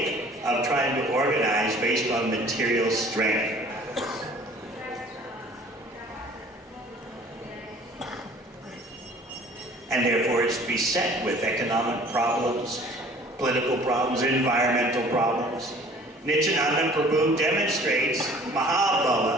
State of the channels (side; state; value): both; normal; correlation 0.51